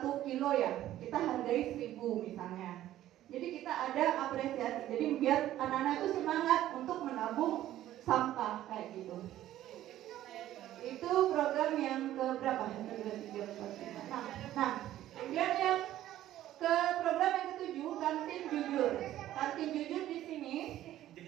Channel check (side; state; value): left; quieter; 13.3 dB